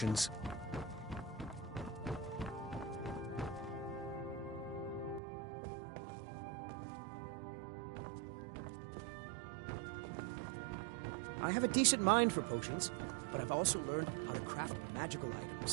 I have a decent mind for potions, but I've also learned how to craft magical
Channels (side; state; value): left; drops out; at 5.2 s